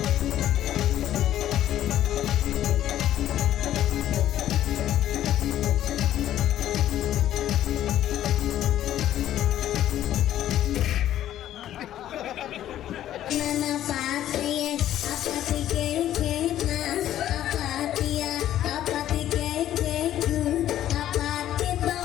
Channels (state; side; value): quieter; right; 12.2 dB